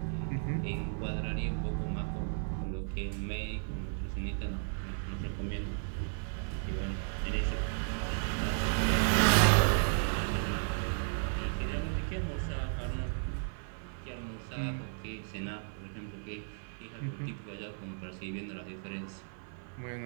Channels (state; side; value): silent; left; 55 dB below the other